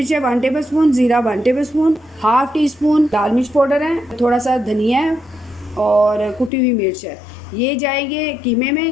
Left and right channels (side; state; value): right; drops out; at 6.5 s